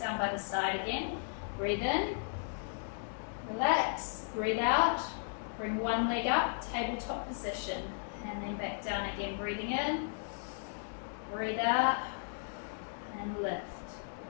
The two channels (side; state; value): right; silent; digital silence